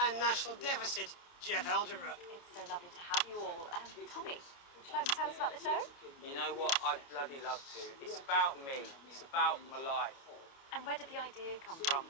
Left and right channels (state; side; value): late; right; 29 ms